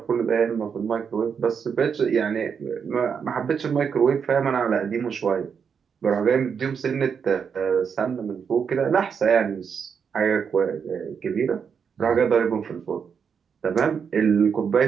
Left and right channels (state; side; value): quieter; left; 6.7 dB